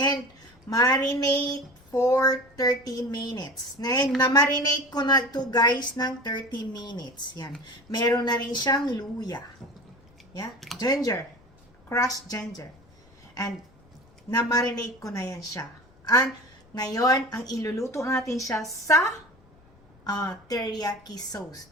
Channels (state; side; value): noise; left; rumble, 28 dB below the sound